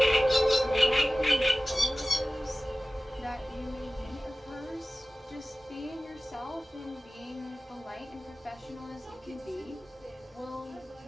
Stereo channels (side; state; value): both; normal; correlation 0.96